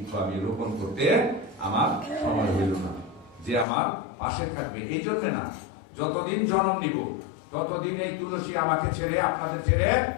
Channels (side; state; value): right; drops out; at 3.7 s